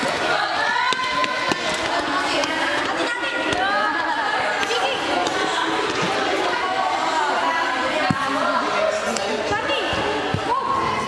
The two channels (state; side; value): identical; both; correlation 1.00